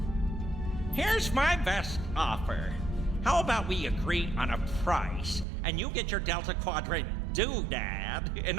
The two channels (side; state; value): left; drops out; at 5.5 s